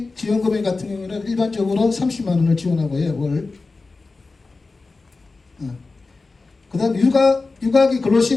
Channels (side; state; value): right; quieter; 3.8 dB